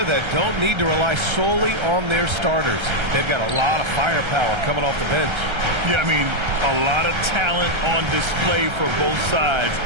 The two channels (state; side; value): late; left; 1.3 ms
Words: that don't need to rely solely on their starters. They've got a lot of firepower coming off the bench. Yeah, I mean, a lot of talent on display for both sides.